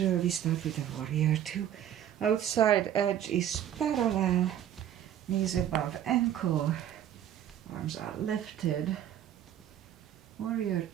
we start with a warrior 2. Outside edge is parallel, knees above ankle, arms are lifted. Warrior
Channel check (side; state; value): left; quieter; 10.7 dB